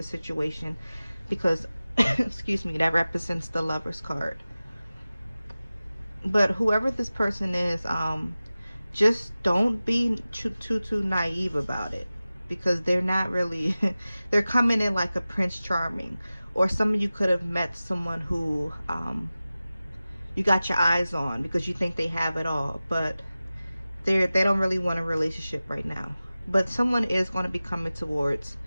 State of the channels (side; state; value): both; inverted; correlation -0.96